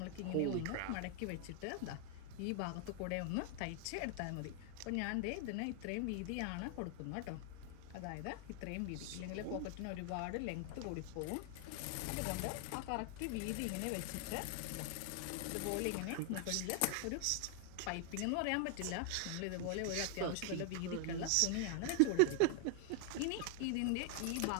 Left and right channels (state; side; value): different; both; correlation 0.00